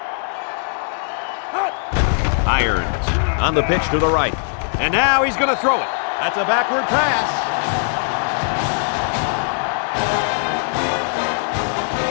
Irons on the pitch to the right. And now he's going to throw it. That's a backward pass.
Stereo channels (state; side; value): silent; right; digital silence